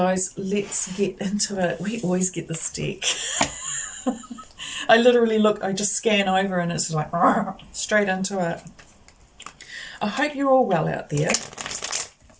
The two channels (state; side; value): identical; both; correlation 1.00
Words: let's get into it. We always get this deck. I literally look, I just scan over and it's like straight into it. I hope you're all well out there.